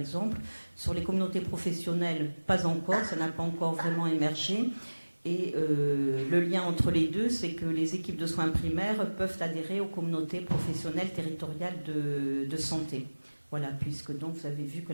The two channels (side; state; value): both; inverted; correlation -1.00